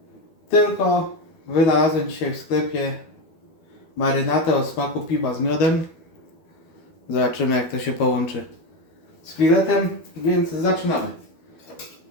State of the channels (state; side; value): late; right; 12 ms